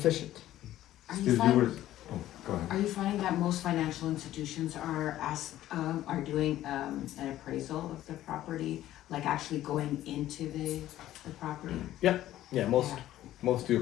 Are you Steve, you finding, were, oh, go ahead. are you finding that most financial institutions are doing an appraisal of the property, like actually going into the property? Yeah, most do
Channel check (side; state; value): right; quieter; 13.7 dB